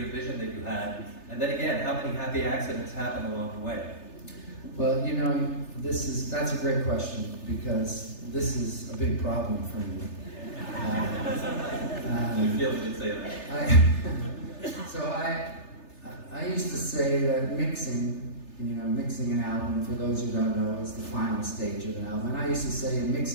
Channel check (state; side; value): late; right; 3.3 ms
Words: vision that you had? And then again, how many happy accidents happen along the way? Well, you know, that's a great question, because this is a big problem for me. I feel like you'd say that. I used to say that mixing an album, for those who don't know, is the final stage of an album. And I used to say